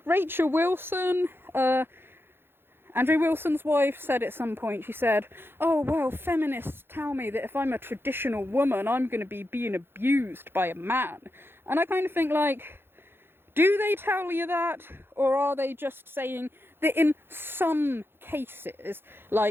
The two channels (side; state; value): left; late; 0.11 ms